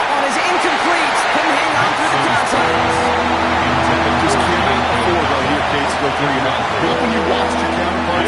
one is incomplete. Couldn't hang on through the contact. Just can't afford right here, Kate, to go 3-0. Not when you watch your counterpart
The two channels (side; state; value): both; identical; correlation 1.00